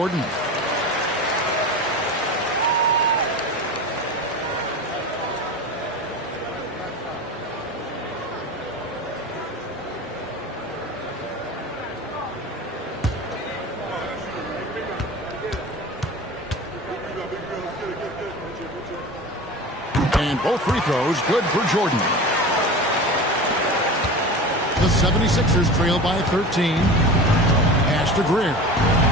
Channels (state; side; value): normal; both; correlation 0.33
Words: And both free throws good for Jordan. The 76ers trail by 13. Pass to Greer.